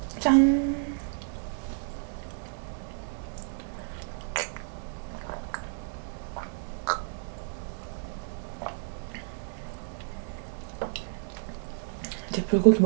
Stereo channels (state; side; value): silent; left; 57 dB below the other